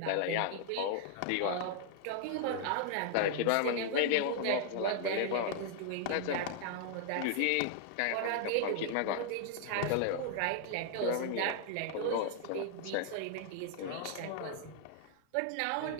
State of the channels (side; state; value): both; different; correlation 0.00